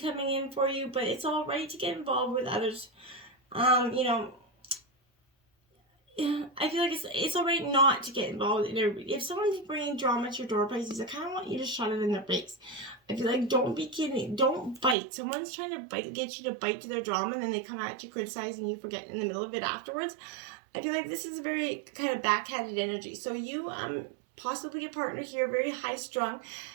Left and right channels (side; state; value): left; drops out; at 15.0 s